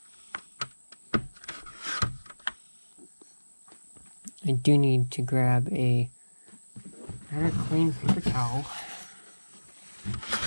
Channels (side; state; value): both; inverted; correlation -1.00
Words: I do need to grab a very clean paper towel